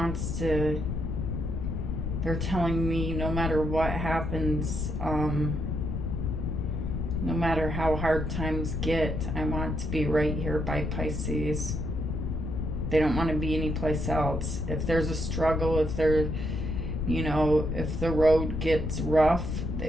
to, they're telling me no matter what happens, no matter how hard times get, I want to be right here by Pisces. They don't want to be anyplace else. If there's a struggle, if they're, you know, if the road gets rough,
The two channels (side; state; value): left; noise; rumble, 2 dB below the sound